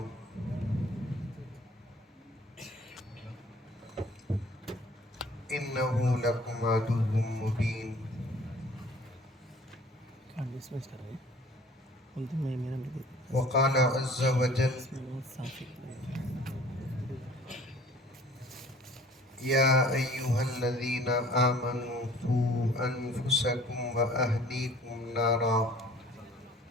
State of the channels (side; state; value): both; normal; correlation 0.51